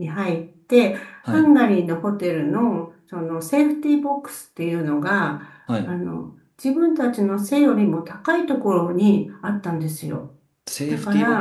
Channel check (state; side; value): identical; both; correlation 1.00